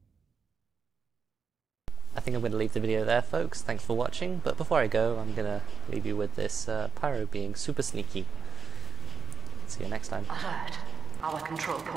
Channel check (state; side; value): quieter; left; 5.4 dB